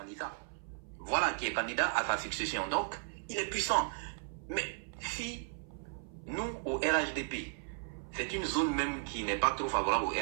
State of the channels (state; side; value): silent; left; 54 dB below the other